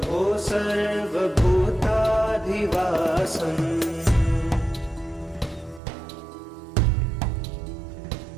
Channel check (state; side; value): drops out; left; at 5.8 s